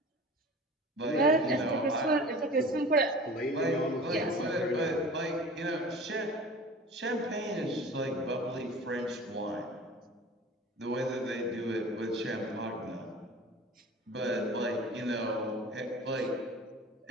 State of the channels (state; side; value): normal; both; correlation 0.40